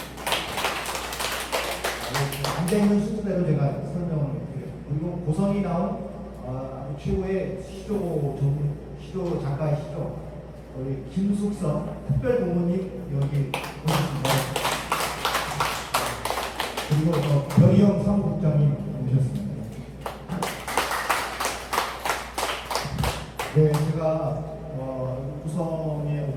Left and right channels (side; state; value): both; identical; correlation 1.00